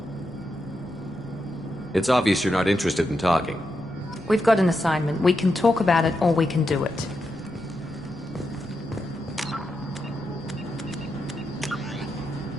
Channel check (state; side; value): noise; left; rumble, 27 dB below the sound